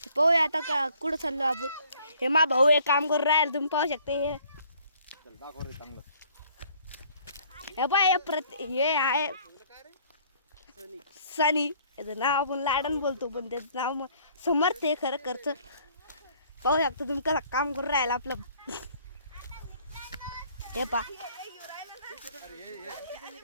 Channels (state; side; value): inverted; both; correlation -0.58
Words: पाहूया आता का कुठं चाललो आपण. हे मा भाऊ एक काम करून राहील, तुम्ही पाहू शकता. हे बाय हे आहे सनी, याचं नाव आपण लाडन बोलतो पण त्याचं नाव समर्थ आहे खरं खर्च. पाहू शकता तुम्ही कसं काम करून राहिला आपलं. हे पाहायला